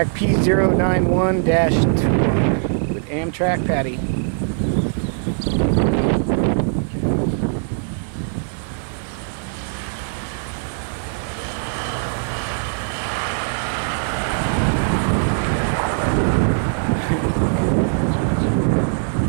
P091-21 with Amtrak Patti.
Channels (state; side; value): silent; left; 61 dB below the other